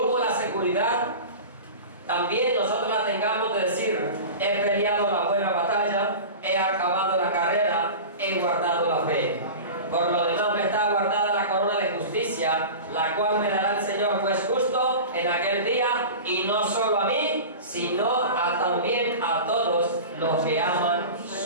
la seguridad, también nosotros la tengamos de decir: he peleado la buena batalla, he acabado la carrera, he guardado la fe. Por lo demás me está guardada la corona de justicia, la cual me dará el Señor juez justo en aquel día, y no solo a mí, sino también a todos los que aman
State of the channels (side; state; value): both; inverted; correlation -0.32